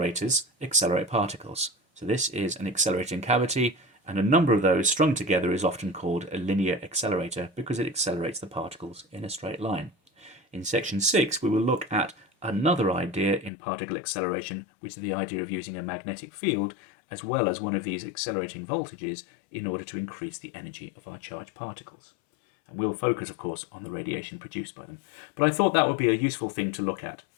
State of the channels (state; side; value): drops out; right; at 13.5 s